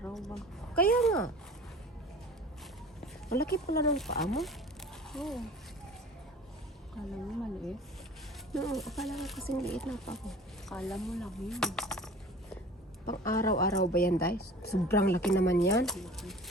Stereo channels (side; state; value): both; normal; correlation 0.43